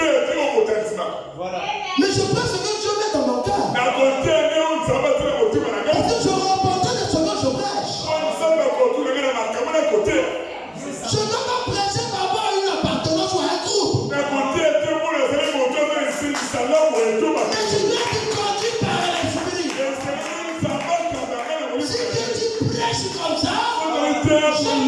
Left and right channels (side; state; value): both; identical; correlation 1.00